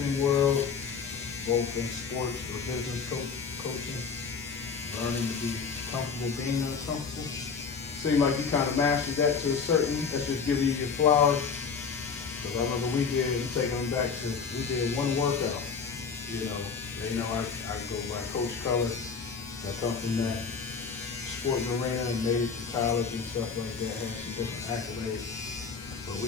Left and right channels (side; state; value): right; quieter; 5.7 dB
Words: world, both in sports or business coaching. Learning to be comfortable being uncomfortable. Seems like you kind of mastered that to a certain, that's just giving you your flowers. Because I remember we did one workout. You know, they know I go by Coach Culler. That come from that sports arena and made it to college and stuff like that, had some different accolades. But